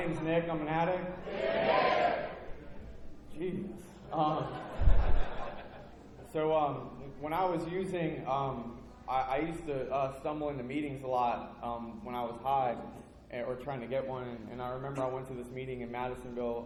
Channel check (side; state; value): both; identical; correlation 1.00